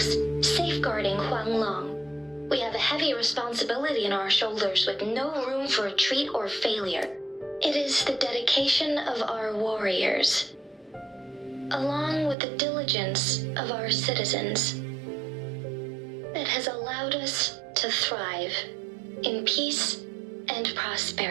safeguarding Huanglong. We have a heavy responsibility on our shoulders with no room for retreat or failure. It is the dedication of our warriors, along with the diligence of our citizens, that has allowed us to thrive in peace and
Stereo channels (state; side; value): drops out; left; at 12.4 s